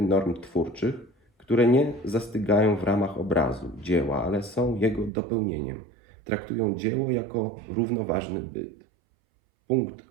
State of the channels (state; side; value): drops out; left; at 5.1 s